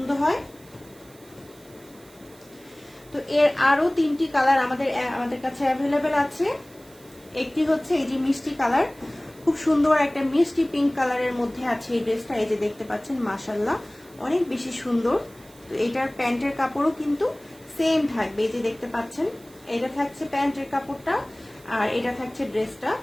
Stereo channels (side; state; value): right; noise; hiss, 25 dB below the sound